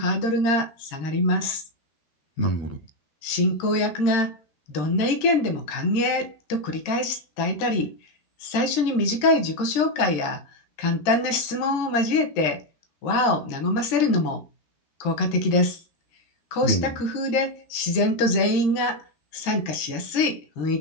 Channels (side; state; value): right; late; 13 ms